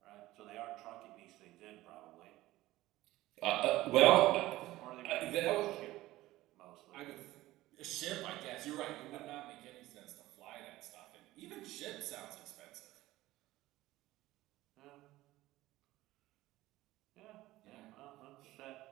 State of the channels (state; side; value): quieter; left; 16.9 dB